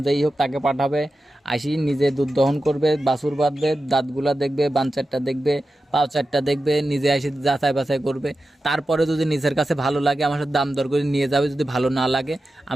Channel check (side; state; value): both; normal; correlation 0.92